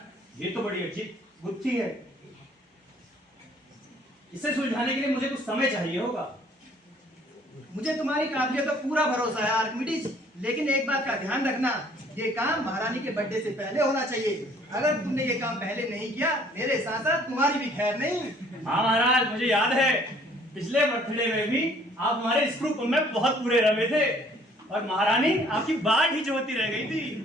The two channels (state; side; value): normal; both; correlation 0.58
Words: ये तो बड़ी अच्छी गुत्थी है। इसे सुलझाने के लिए मुझे कुछ समय चाहिए होगा। मुझे तुम्हारी काबिलियत पर पूरा भरोसा है आर्किमिडीज, लेकिन एक बात का ध्यान रखना, ये काम महारानी के बर्थडे से पहले होना चाहिए। अगर तुमने ये काम पहले नहीं किया, मेरे साथ साथ तुम्हारी भी खैर नहीं। हाँ महाराज, मुझे याद है पिछले बर्थडे में भी आप हमारे स्क्रू पुल में बहुत पूरे रमे थे और महारानी आपकी बाट ही जोती रह गई थी।